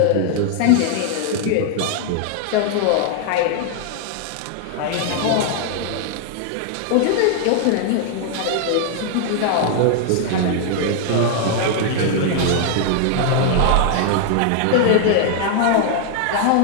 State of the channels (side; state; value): both; different; correlation 0.00